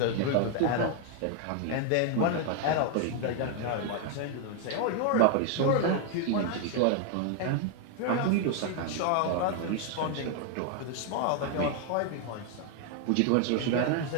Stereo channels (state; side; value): different; both; correlation 0.00